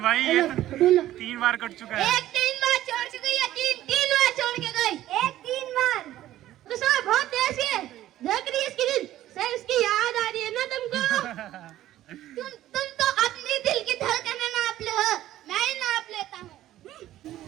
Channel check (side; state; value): left; quieter; 13.8 dB